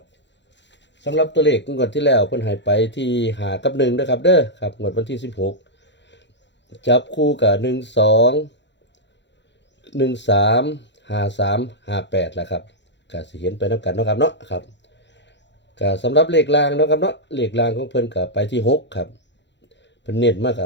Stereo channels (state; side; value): late; right; 0.52 ms